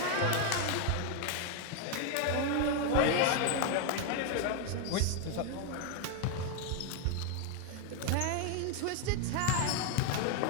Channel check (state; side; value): different; both; correlation 0.01